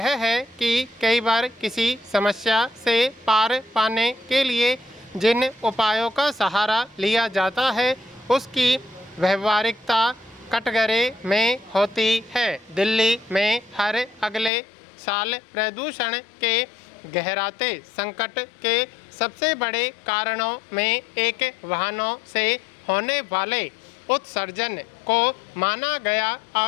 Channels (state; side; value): drops out; right; at 14.5 s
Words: है कि कई बार किसी समस्या से पार पाने के लिए जिन उपायों का सहारा लिया जाता है उसकी व्यवहारिकता कटघरे में होती है। दिल्ली में हर अगले साल प्रदूषण के गहराते संकट के सबसे बड़े कारणों में एक वाहनों से होने वाले उत्सर्जन को माना गया